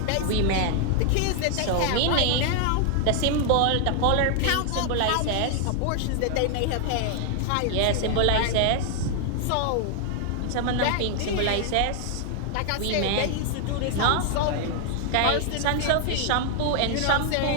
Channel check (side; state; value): both; different; correlation 0.00